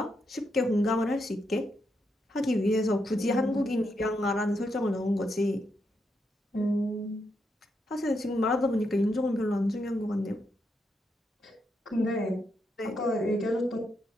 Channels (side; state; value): both; normal; correlation 0.81